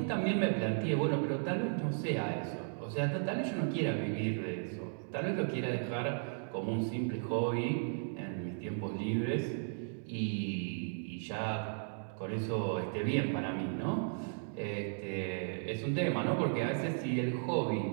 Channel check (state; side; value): silent; left; digital silence